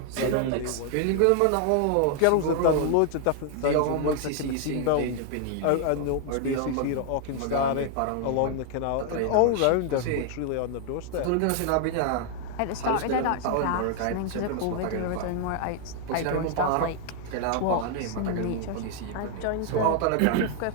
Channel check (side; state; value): both; different; correlation 0.00